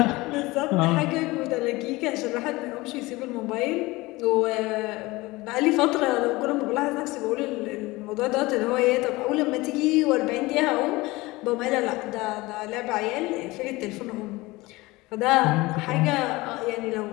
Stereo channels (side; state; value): right; quieter; 21.2 dB